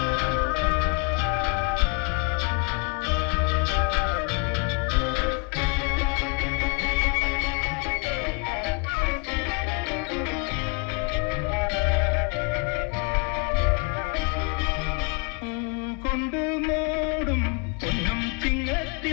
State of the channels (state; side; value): quieter; right; 33.7 dB